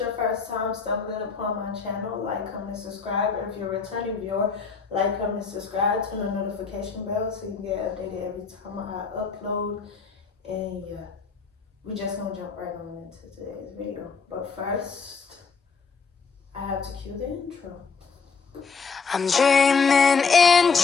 first time stumbling upon my channel, like, comment, subscribe. If you're a returning viewer, like, comment, subscribe, turn the notification bell so you can get updated every time I upload. And yeah, we just gonna jump right on into today's video. But first, I have to cue the intro. I'm dreaming in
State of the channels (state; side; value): quieter; right; 5.2 dB